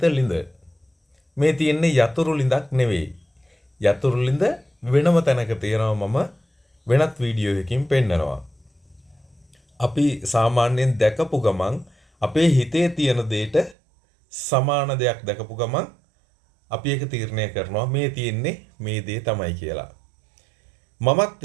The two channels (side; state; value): left; drops out; at 13.8 s